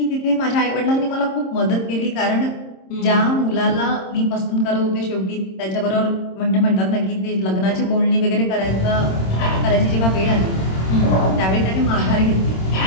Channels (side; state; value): right; late; 26 ms